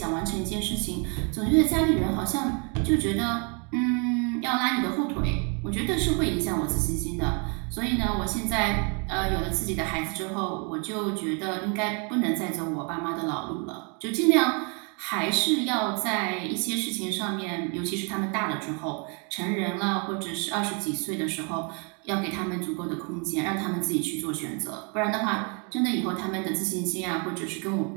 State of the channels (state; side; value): quieter; left; 35.6 dB